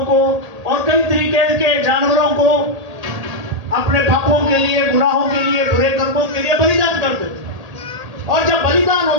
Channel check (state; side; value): late; left; 1.8 ms